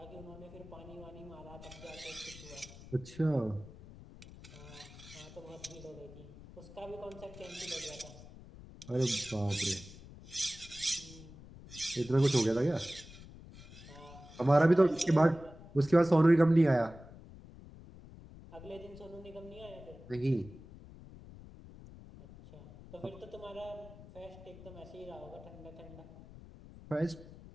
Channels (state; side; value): noise; left; rumble, 17 dB below the sound